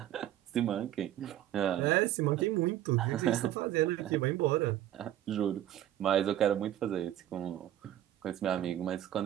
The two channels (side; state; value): left; quieter; 12.4 dB